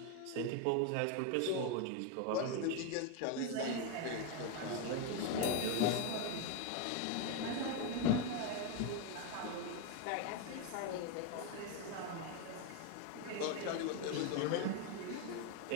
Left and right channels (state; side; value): different; both; correlation 0.01